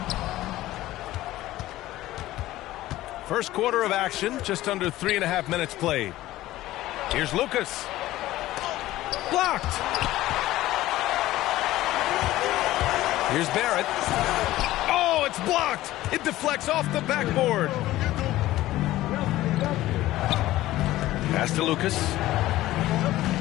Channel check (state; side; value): quieter; right; 15.9 dB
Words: First quarter of action, just under 3.5 minutes played. Here's Lucas. Blocked. Here's Barrett. Oh, it's blocked. It deflects off the backboard. Pass to Lucas.